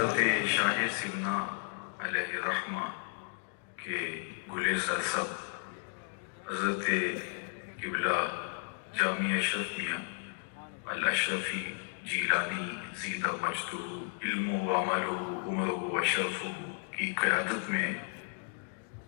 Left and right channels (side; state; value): right; silent; 55 dB below the other